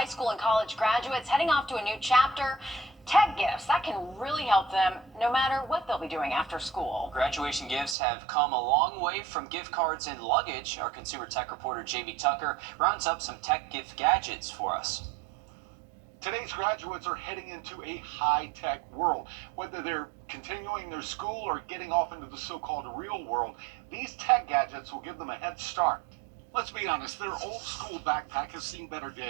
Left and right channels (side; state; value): left; drops out; at 8.0 s